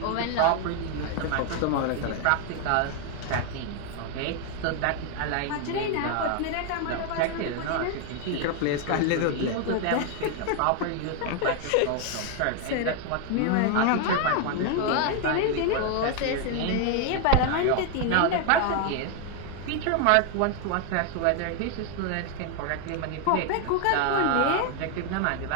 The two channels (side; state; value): both; different; correlation 0.01